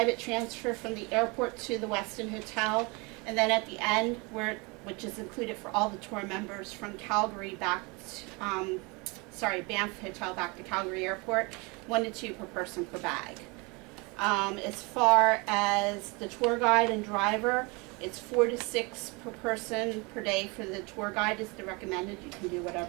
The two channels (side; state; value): left; quieter; 28.3 dB